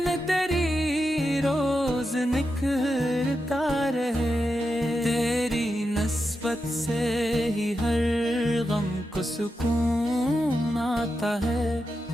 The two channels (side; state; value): both; normal; correlation 0.88